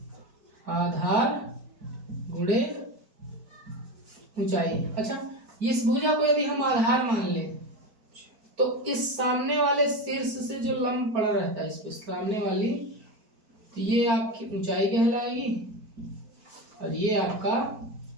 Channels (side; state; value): left; late; 4.5 ms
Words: आधार गुणे ऊंचाई। अच्छा, इस भुजा को यदि हम आधार मान लें तो इस सामने वाले शीर्ष से जो लंब पड़ा रहता है इस पे सामने वाली, तो ये आपकी ऊंचाई कहलाएगी और ये आपका